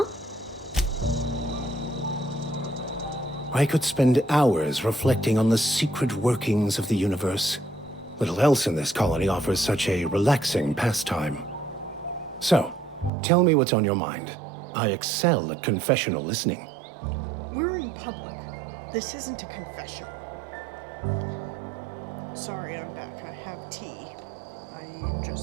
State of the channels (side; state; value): left; drops out; at 13.1 s